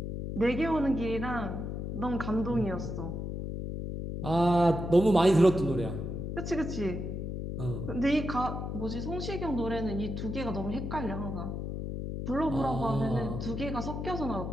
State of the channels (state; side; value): noise; left; hum, 4 dB below the sound